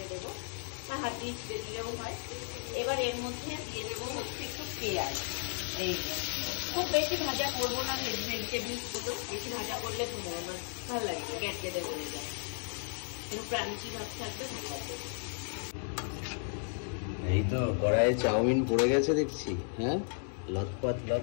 দেবো, বা হাত দিয়ে ছিঁড়ে দিলেও হয়। এবার এর মধ্যে দিয়ে দেবো হচ্ছে একটু পেঁয়াজ, এই খুব বেশি ভাজা করবো না ভেজিটেবলস গুলো, বেশি ভাজা করলে ভালো লাগবে, গ্যাটগেটে বলে যায়, একটু ক্রাঞ্চি ভাব থাকবে, ভালো লাগবে। এই তো কড়াইয়ে চাউমিন পড়ে গেছে দেখছি, হ্যাঁ লটপট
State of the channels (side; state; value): right; silent; 55 dB below the other